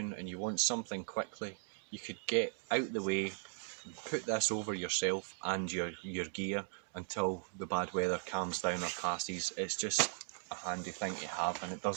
and you want something quickly, you could get out the way, put this over yourself and your gear until the bad weather calms down or passes. It's just a handy thing to have, and it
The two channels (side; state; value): left; silent; 52 dB below the other